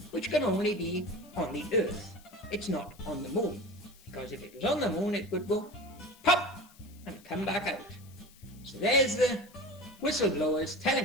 which can only be on the Earth. It's not on the moon, because if it was on the moon, it would go pop and come back out. So there's the whistleblowers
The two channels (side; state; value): left; noise; hiss, 25 dB below the sound